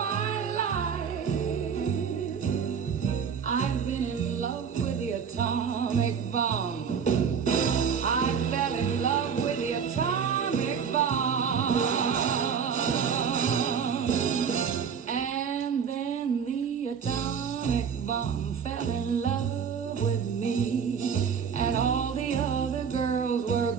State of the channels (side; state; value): left; quieter; 6.9 dB